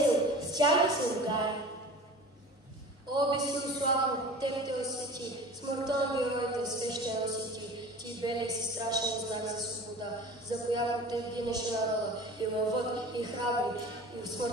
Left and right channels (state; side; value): normal; both; correlation 0.39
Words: с тях да се ругае. О, безсилославно, теб те освети, смъртта на героите свещено си ти. Ти белех си страшен знак за свобода, за която те гинеше народа, и лъвът, и храбри, и в